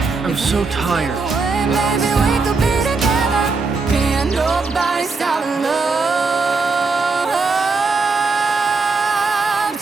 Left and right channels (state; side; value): quieter; left; 4.2 dB